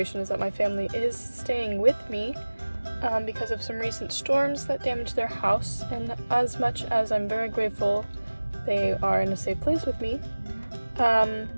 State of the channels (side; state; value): both; inverted; correlation -1.00